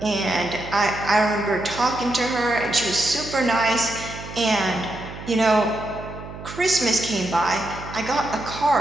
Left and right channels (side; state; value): right; noise; hum, 12 dB below the sound